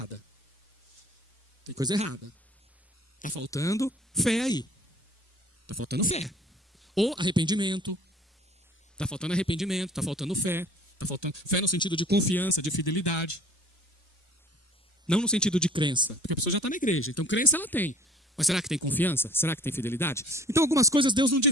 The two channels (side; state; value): both; normal; correlation 0.50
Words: Tem coisa errada. Está faltando fé aí. Está faltando fé. Ou arrependimento. Está faltando arrependimento, está faltando fé. Está faltando fé no sentido de confiança, de fidelidade. Não no sentido de crença. Porque a pessoa já está na igreja. Então crença ela tem. Mas será que tem confiança? Será que tem fidelidade? Então algumas coisas Deus não